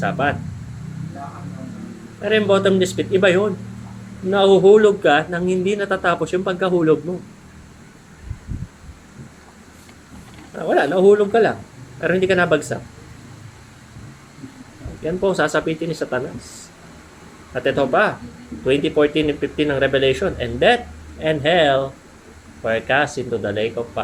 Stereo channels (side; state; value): both; identical; correlation 1.00